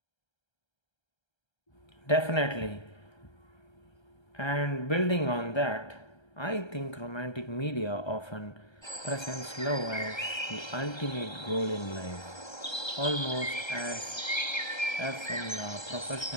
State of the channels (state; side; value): late; right; 1.3 ms